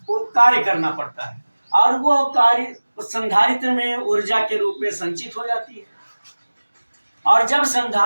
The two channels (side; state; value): both; inverted; correlation -1.00